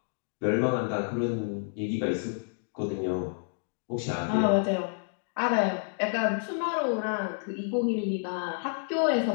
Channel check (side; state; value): right; silent; digital silence